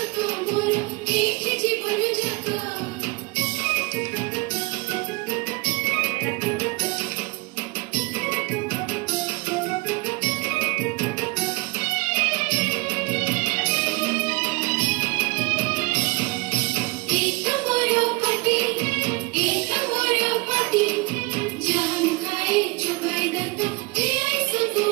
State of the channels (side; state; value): left; quieter; 26.4 dB